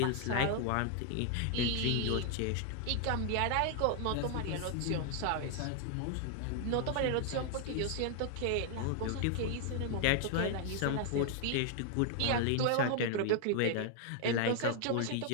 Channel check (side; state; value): both; different; correlation 0.00